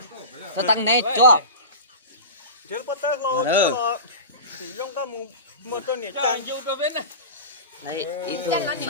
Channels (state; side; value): inverted; both; correlation -0.30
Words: Tôi tăng này cho. giờ bắt tay lo thì dùng cái một tôi nhảy trang vô cái bên này Đấy, ít thôi